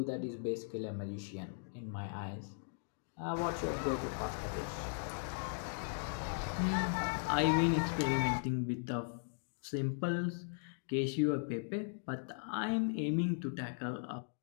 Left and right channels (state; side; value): silent; right; digital silence